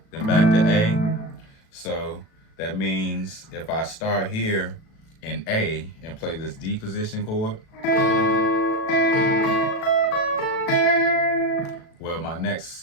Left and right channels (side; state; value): right; late; 37 ms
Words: then back to A. So that means if I start here in A and play this D position chord, well, my